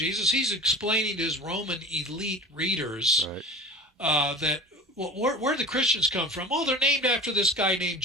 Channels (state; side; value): normal; both; correlation 0.35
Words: He's explaining to his Roman elite readers Right. that, well, where the Christians come from? Oh, they're named after this guy named